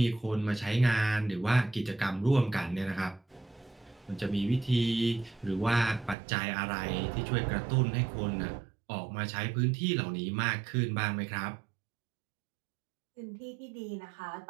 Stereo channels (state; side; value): drops out; left; at 6.2 s